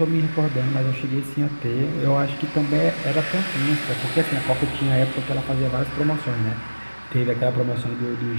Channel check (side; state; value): both; inverted; correlation -1.00